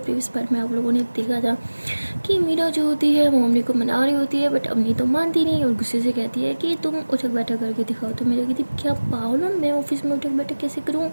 पार्ट में आप लोगों ने देखा था कि मीरा जो होती है वो अमनी को मना रही होती है, बट अमनी तो मानती नहीं और गुस्से से कहती है कि तुम उठक बैठक करके दिखाओ। तो मेरा कहती क्या पागल हो, मैं ऑफिस में उठक बैठक कैसे करूँ?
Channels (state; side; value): inverted; both; correlation -1.00